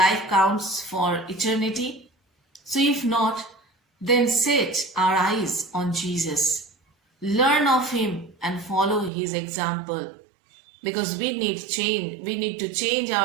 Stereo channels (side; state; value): left; drops out; at 9.1 s